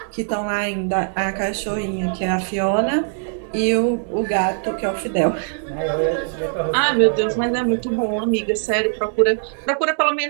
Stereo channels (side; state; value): left; silent; digital silence